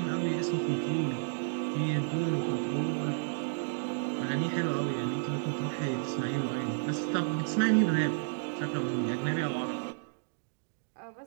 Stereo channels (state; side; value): silent; left; digital silence